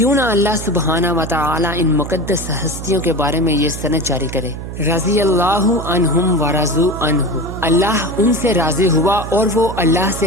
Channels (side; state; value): right; noise; hum, 9 dB below the sound